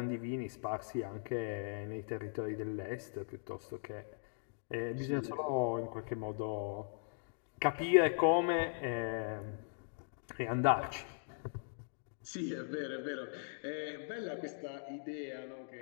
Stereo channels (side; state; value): right; silent; digital silence